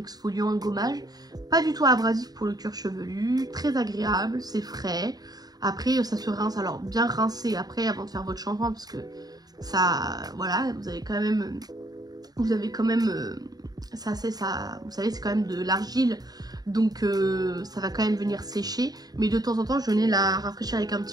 un gommage. Pas du tout abrasif pour le cuir chevelu, très agréable, c'est frais. Après, ça se rince, alors bien rincé après avant de faire votre shampoing parce que ça, voilà, vous avez quand même, ça, vous savez, c'est quand même de l'argile. Donc ça va quand même venir sécher. Mais de temps en temps, je venais la rafraîchir avec un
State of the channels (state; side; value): late; left; 0.19 ms